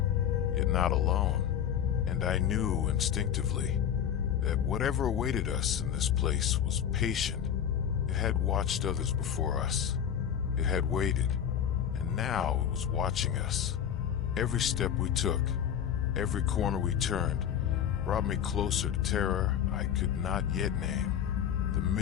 yet not alone, and I knew instinctively that whatever awaited us in this place was patient. It had watched others before us. It had waited, and now it was watching us. Every step we took, every corner we turned, brought me closer to terror I could not yet name. The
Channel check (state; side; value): quieter; right; 9.1 dB